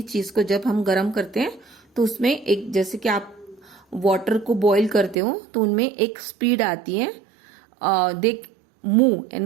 चीज को जब हम गर्म करते हैं तो उसमें एक, जैसे कि आप वाटर को बॉईल करते हो तो उनमें एक स्पीड आती है, दे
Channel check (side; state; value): left; drops out; at 5.2 s